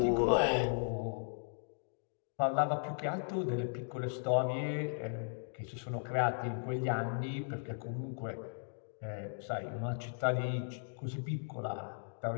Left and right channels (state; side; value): silent; right; digital silence